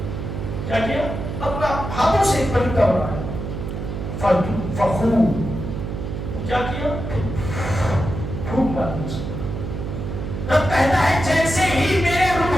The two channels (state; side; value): noise; right; hum, 5 dB below the sound